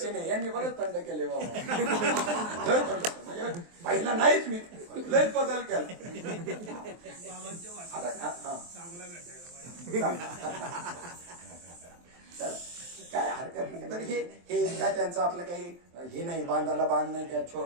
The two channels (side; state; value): left; late; 23 ms